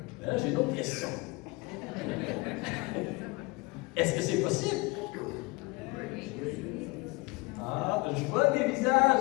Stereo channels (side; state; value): right; quieter; 24.3 dB